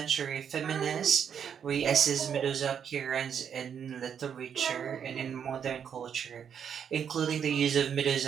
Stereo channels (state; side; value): quieter; left; 7.9 dB